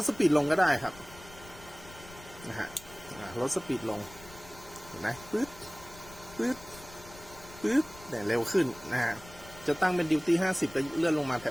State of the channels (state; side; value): noise; left; rumble, 20 dB below the sound